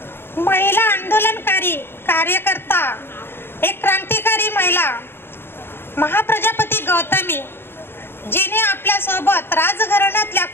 महिला आंदोलनकारी कार्यकर्ता, एक क्रांतिकारी महिला महाप्रजापती गौतमी, जिने आपल्या सोबत राजघराण्यातल्या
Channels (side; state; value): right; late; 0.11 ms